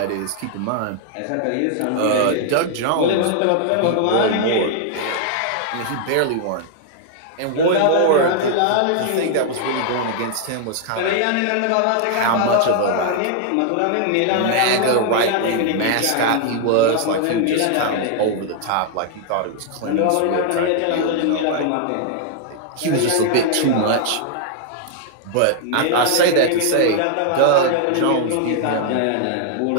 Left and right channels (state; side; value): different; both; correlation 0.00